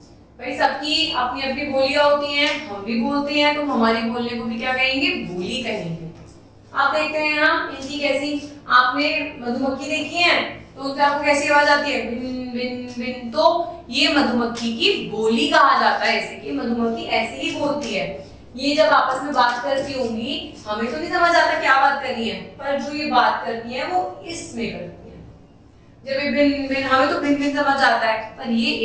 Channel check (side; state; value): both; identical; correlation 1.00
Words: भाई सबकी अपनी अपनी बोलियां होती हैं, हम भी बोलते हैं, तो हमारी बोलने को भी क्या कहेंगे? बोली कहेंगे। आप देखते हैं यहाँ इनकी कैसी, आपने मधुमक्खी देखी है तो उनसे आपको कैसी आवाज आती है? बिन बिन बिन। तो ये मधुमक्खी की बोली कहा जाता है, ऐसे कि मधुमक्खी ऐसे ही बोलती है। ये जब आपस में बात करती होंगी, हमें तो नहीं समझ आता क्या बात कर रही है, पर जो ये बात करती है वो इसमें करती है। जब ये भिन भिन, हमें तो भिन भिन समझ आता है, पर ये